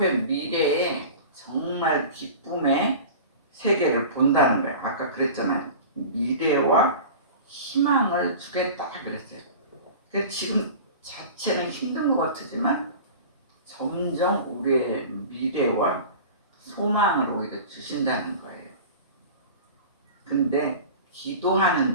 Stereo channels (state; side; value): inverted; both; correlation -0.36